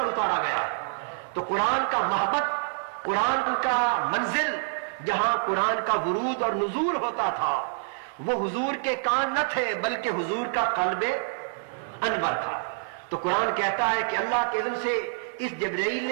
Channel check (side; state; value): left; silent; 59 dB below the other